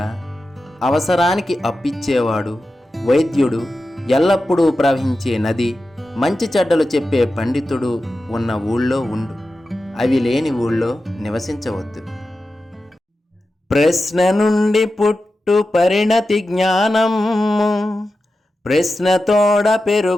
అవసరానికి అప్పిచ్చేవాడు వైద్యుడు, ఎల్లప్పుడూ ప్రవహించే నది, మంచి చెడ్డలు చెప్పే పండితుడు ఉన్న ఊళ్ళో ఉండు, అవి లేని ఊళ్ళో నివసించవద్దు. ప్రశ్న నుండి పుట్టు పరిణతి జ్ఞానము, ప్రశ్నతోడ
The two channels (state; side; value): normal; both; correlation 0.92